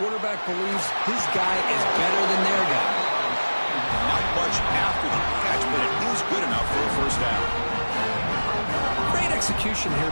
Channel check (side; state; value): both; inverted; correlation -1.00